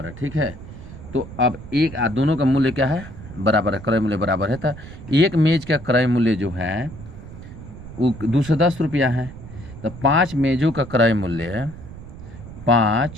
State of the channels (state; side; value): noise; right; rumble, 14 dB below the sound